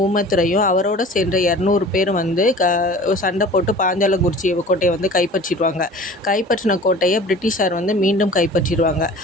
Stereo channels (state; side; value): normal; both; correlation 0.43